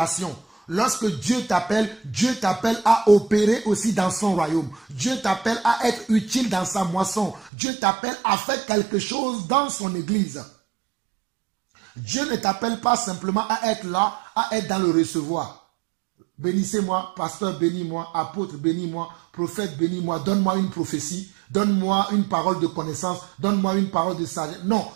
Lorsque Dieu t'appelle à opérer aussi dans son royaume. Dieu t'appelle à être utile dans sa moisson. Dieu t'appelle à faire quelque chose dans son église. Dieu ne t'appelle pas simplement à être là, à être dans le recevoir. Bénissez-moi, pasteur, bénis-moi, apôtre, bénis-moi, prophète, bénis-moi, donne-moi une prophétie, donne-moi une parole de connaissance, donne-moi une parole de sagesse. Non,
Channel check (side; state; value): left; drops out; at 7.5 s